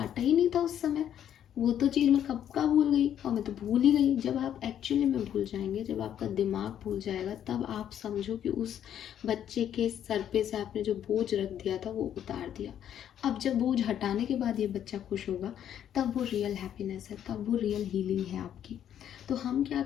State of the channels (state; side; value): quieter; right; 10.0 dB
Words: ही नहीं था उस समय, वो तो चीज़ मैं कब का भूल गई और मैं तो भूल ही गई। जब आप एक्चुअली में भूल जाएंगे, जब आपका दिमाग भूल जाएगा, तब आप समझो कि उस बच्चे के सर पे से आपने जो बोझ रख दिया था वो उतार दिया। अब जब बोझ हटाने के बाद ये बच्चा खुश होगा, तब वो रियल हैप्पीनेस है, तब वो रियल हीलिंग है आपकी। तो हम क्या